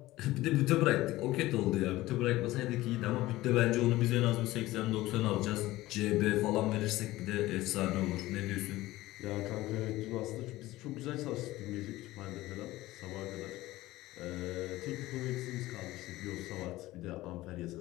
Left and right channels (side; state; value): right; quieter; 17.5 dB